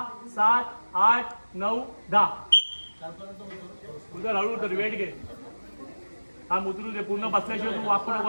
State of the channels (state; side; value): inverted; both; correlation -1.00